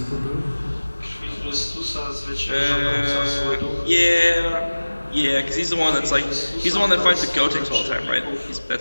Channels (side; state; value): both; inverted; correlation -1.00